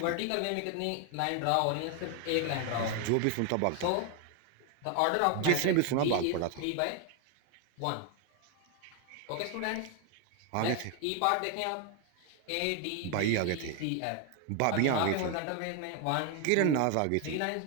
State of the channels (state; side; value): different; both; correlation 0.01